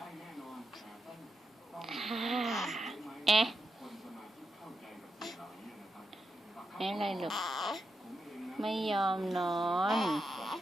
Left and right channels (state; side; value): normal; both; correlation 0.86